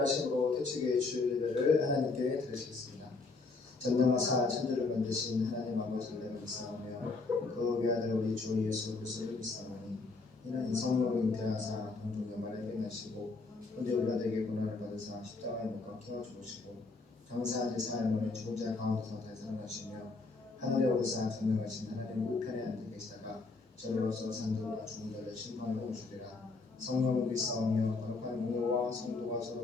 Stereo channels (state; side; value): quieter; right; 3.8 dB